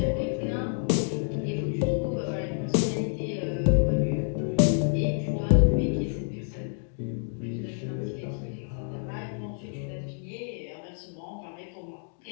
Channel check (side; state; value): right; silent; 57 dB below the other